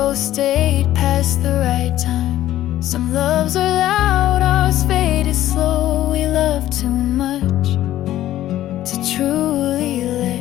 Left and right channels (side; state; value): right; quieter; 13.6 dB